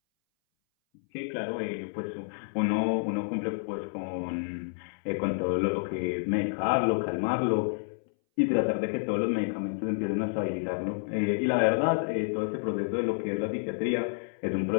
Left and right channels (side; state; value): right; silent; 58 dB below the other